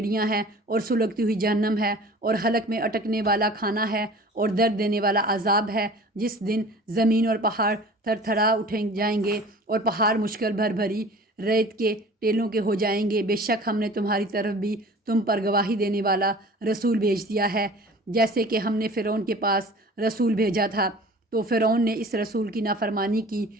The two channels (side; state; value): both; normal; correlation 0.44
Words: ہیں اور سلگتی ہوئی جہنم ہے، اور حلق میں اٹکنے والا کھانا ہے اور درد دینے والا عذاب ہے، جس دن زمین اور پہاڑ تھر تھرا اٹھیں جائیں گے اور پہاڑ مشکل بھری ریت کے ٹیلوں کے ہو جائیں گے۔ بے شک ہم نے تمہاری طرف بھی تم پر گواہی دینے والا رسول بھیج دیا ہے، جیسے کہ ہم نے فرعون کے پاس رسول بھیجا تھا، تو فرعون نے اس رسول کی نافرمانی کی